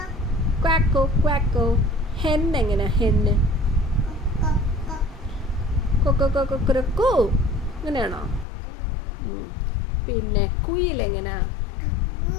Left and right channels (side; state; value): right; drops out; at 8.5 s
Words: ക്വാക്കോ ക്വാക്കോ. ഹെൻ എങ്ങനെയാ? ഹെന്ന് കൊക്കോ കൊക്കോ കൊക്കോ. അങ്ങനെയാണോ? പിന്നെ കുയിൽ എങ്ങനെയാ?